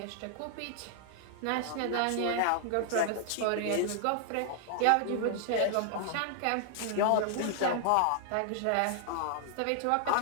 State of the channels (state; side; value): different; both; correlation 0.00